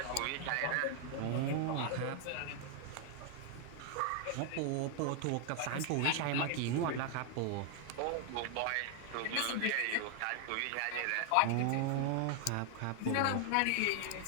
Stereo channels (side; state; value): both; different; correlation 0.00